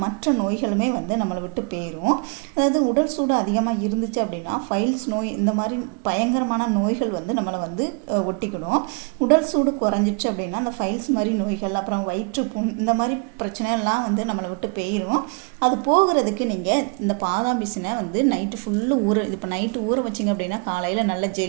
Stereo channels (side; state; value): left; quieter; 35.1 dB